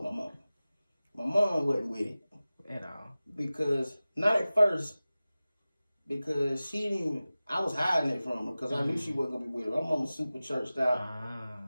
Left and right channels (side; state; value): both; inverted; correlation -0.97